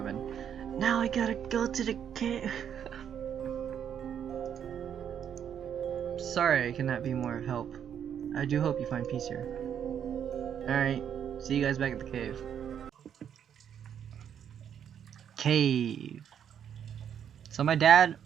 in. Now I gotta go to the cave. Sorry I cannot be more of help. I do hope you find peace here. Alright, see you guys back at the cave. Cave. So my dad,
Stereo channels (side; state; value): left; quieter; 8.8 dB